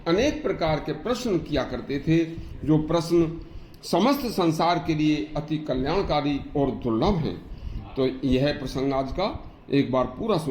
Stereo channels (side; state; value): both; identical; correlation 1.00